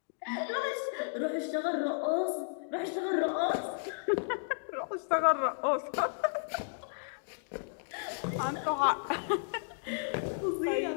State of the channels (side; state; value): right; silent; digital silence